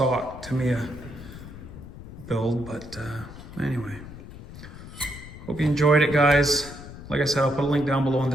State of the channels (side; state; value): left; noise; rumble, 14 dB below the sound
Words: Tamiya build, but anyway, hope you enjoyed it, guys. Like I said, I'll put a link down below in